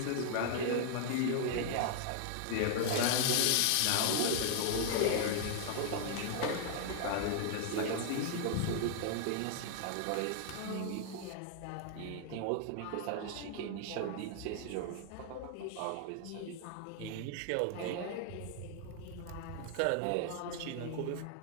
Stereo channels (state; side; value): different; both; correlation 0.00